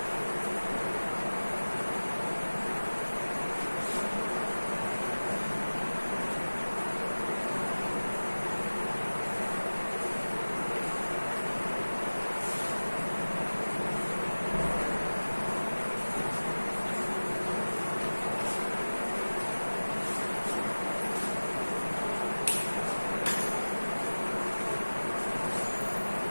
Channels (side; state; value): both; inverted; correlation -1.00